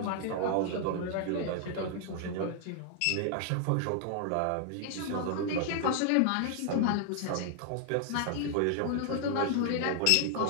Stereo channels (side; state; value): both; different; correlation 0.00